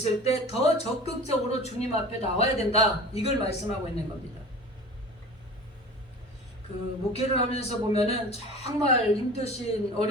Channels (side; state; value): both; normal; correlation 0.38